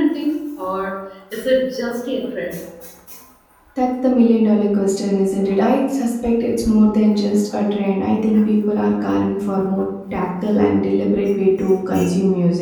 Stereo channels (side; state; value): both; identical; correlation 1.00